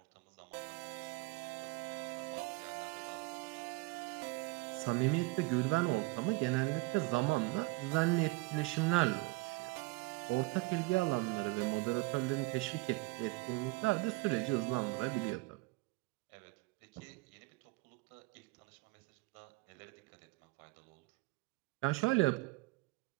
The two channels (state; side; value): quieter; left; 24.2 dB